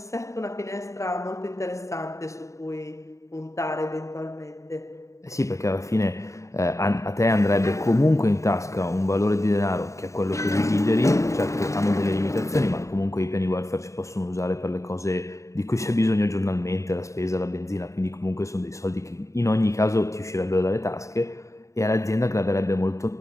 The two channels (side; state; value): right; late; 0.15 ms